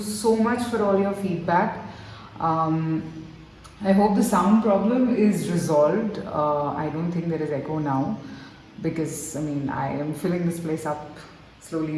much for all your feedback. Um, I hope the sound problem is resolved. I don't think there is echo now because I am filling this place up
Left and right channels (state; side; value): identical; both; correlation 1.00